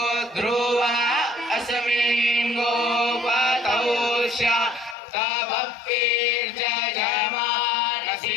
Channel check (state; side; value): drops out; right; at 5.0 s